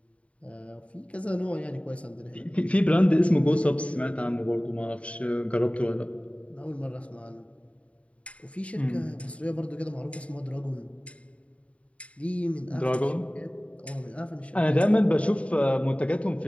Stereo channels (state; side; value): late; right; 0.064 ms